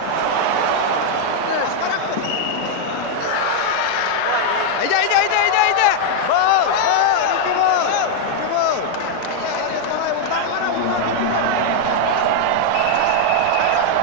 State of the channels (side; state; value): both; different; correlation 0.00